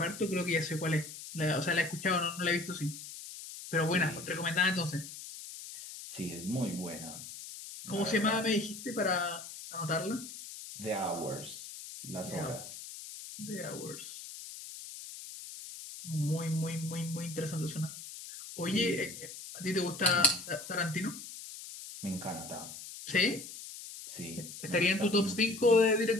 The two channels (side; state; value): left; noise; hiss, 12 dB below the sound